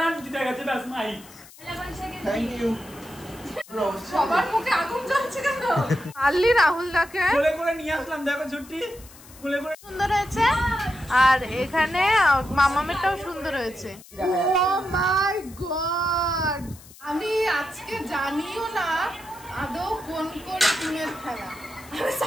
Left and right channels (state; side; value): noise; left; hiss, 21 dB below the sound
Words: জিতে গেছে ব্যাস মাহি। Thank you. সবার মুখে আগুন জ্বলছে কেন? আল্লি রাহুল দাকে কোলে করে নিয়ে আসলাম, দেখো ছুটি কোলে করে। সুন্দর হয়েছে, আর এখানে মামামেরটাও সুন্দর হয়েছে। ও মাই গড, আমি আজকে জানিও না আদৌ কোন কোন টিমের খেলা আমি